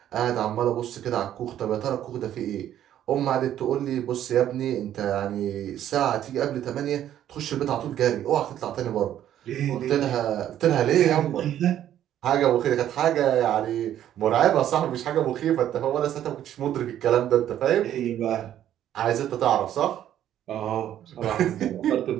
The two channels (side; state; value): left; quieter; 11.3 dB